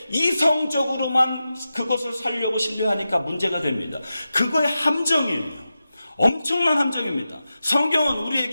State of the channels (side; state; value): both; inverted; correlation -0.91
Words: 이성적으로만 그것을 살려고 신뢰하니까 문제가 됩니다. 그거의 함정이에요. 엄청난 함정입니다. 성경은